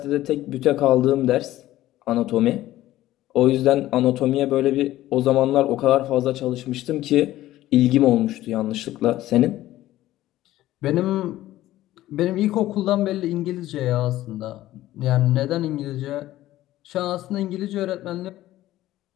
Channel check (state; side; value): quieter; right; 15.0 dB